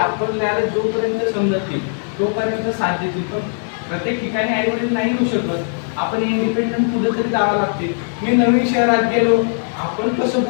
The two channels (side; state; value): right; silent; 65 dB below the other